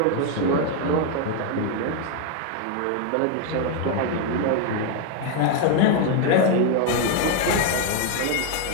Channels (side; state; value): both; different; correlation 0.01